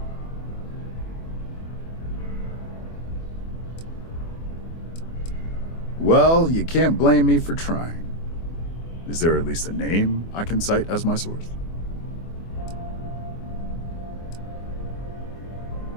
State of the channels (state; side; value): late; right; 24 ms